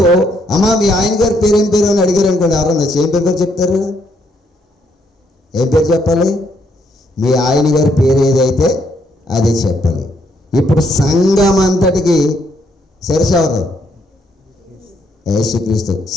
అమ్మా మీ ఆయన గారి పేరు ఏం పేరు అని అడిగారు అనుకోండి, ఎవరన్నా ఏం పేరు చెప్తారు? ఏం పేరు చెప్పాలి? మీ ఆయన గారి పేరు ఏదైతే అదే చెప్పాలి. ఇప్పుడు సంఘం అంతటికి శిరస్సు ఎవరు? యేసుక్రీస్తు.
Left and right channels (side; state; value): both; normal; correlation 0.73